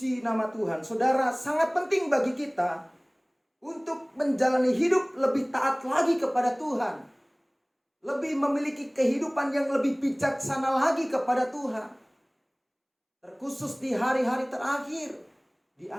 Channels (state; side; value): identical; both; correlation 1.00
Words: nama Tuhan. Saudara, sangat penting bagi kita untuk menjalani hidup lebih taat lagi kepada Tuhan. Lebih memiliki kehidupan yang lebih bijaksana lagi kepada Tuhan. Terkhusus di hari-hari terakhir, di